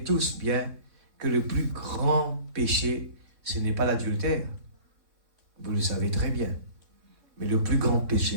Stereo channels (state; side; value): late; left; 3.6 ms